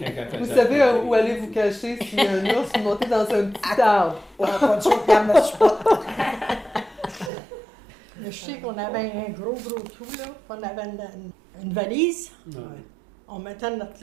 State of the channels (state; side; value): drops out; left; at 7.3 s